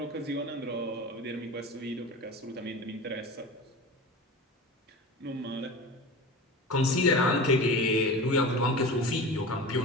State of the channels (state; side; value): normal; both; correlation 0.31